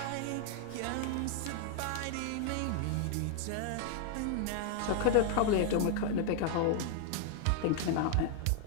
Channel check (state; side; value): different; both; correlation 0.00